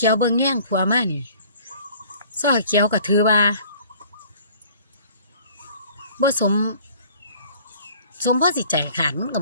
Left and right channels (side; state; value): both; inverted; correlation -0.51